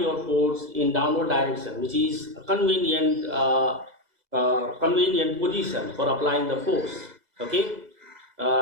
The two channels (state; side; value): late; left; 2.0 ms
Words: force in downward direction, which is a convenient position for applying the force. Okay,